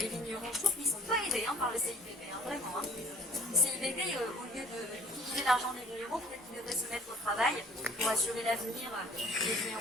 vignerons. Je trouve qu'ils ne sont pas aidés par le CIVB, vraiment. Le CIVB, au lieu d'utiliser l'argent des vignerons, peut-être qu'ils devraient se mettre au travail pour assurer l'avenir des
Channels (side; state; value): both; normal; correlation 0.52